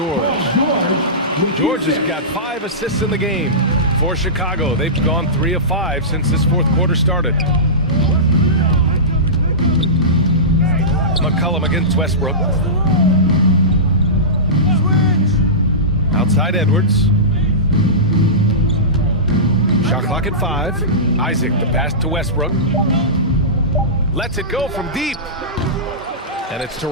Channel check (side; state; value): both; normal; correlation -0.20